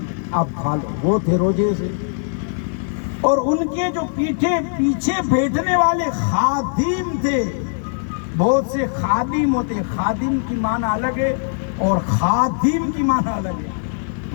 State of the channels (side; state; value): right; silent; digital silence